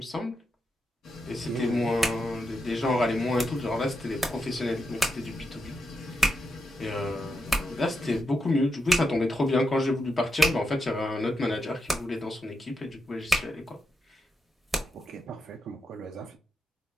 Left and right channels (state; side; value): normal; both; correlation 0.85